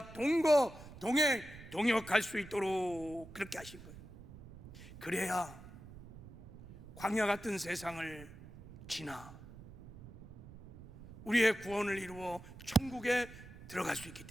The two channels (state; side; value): noise; right; rumble, 16 dB below the sound